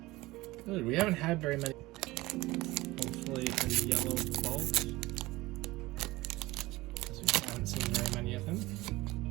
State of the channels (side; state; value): left; quieter; 19.6 dB